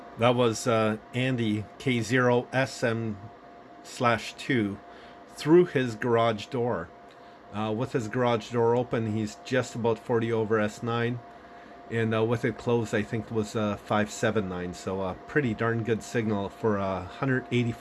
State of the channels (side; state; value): both; identical; correlation 1.00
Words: That was Andy K0SM/2 through his garage door. With his garage door open, he's just about 40 over S9, and with it closed, I think it was 579. So a pretty darn good signal for